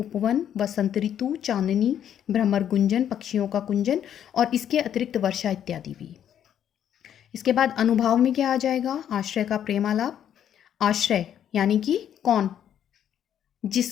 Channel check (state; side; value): quieter; right; 9.8 dB